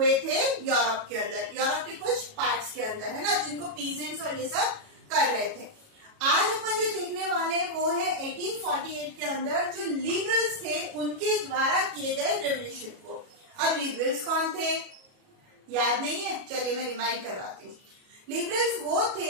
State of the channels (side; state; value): left; late; 37 ms